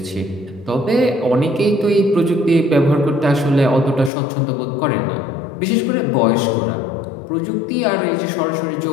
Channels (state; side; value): drops out; right; at 4.1 s